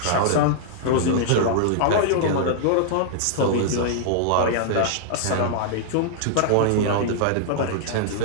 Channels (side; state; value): both; different; correlation -0.01